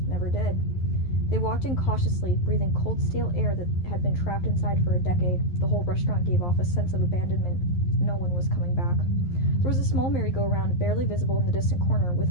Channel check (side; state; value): right; late; 11 ms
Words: never did. They walked in cautiously, breathing cold, stale air that had been trapped inside for a decade. The whole restaurant gave off a sense of abandonment. No one was coming back. There was a small merry-go-round barely visible in the distant corner, with